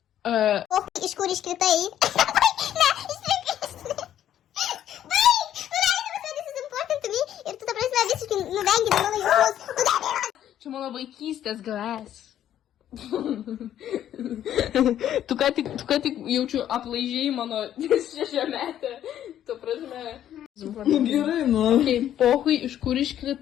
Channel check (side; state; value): right; quieter; 11.1 dB